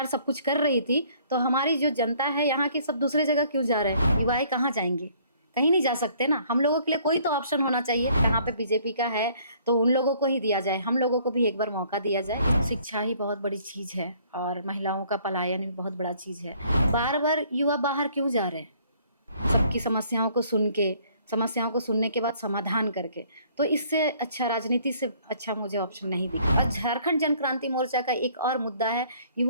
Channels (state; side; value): inverted; both; correlation -0.60